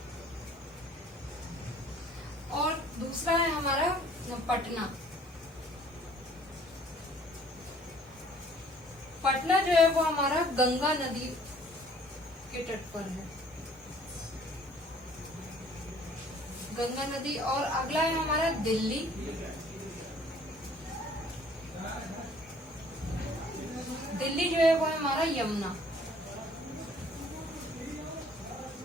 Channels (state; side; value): normal; both; correlation 0.56